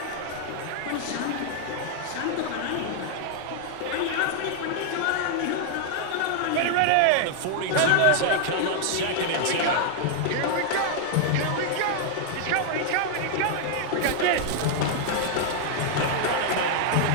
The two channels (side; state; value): both; different; correlation 0.00